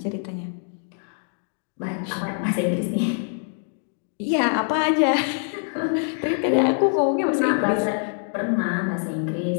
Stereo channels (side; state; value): right; silent; 62 dB below the other